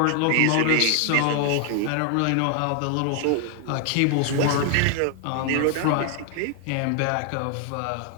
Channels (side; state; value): both; different; correlation 0.00